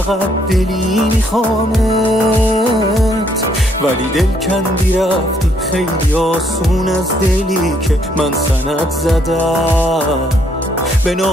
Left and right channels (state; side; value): normal; both; correlation 0.69